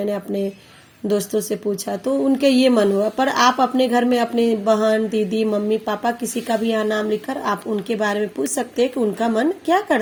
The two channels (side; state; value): both; identical; correlation 1.00